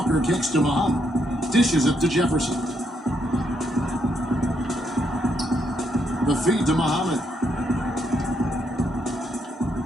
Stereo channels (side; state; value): both; normal; correlation 0.76